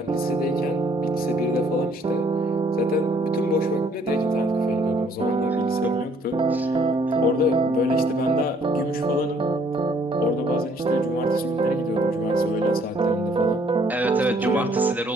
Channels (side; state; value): both; normal; correlation 0.63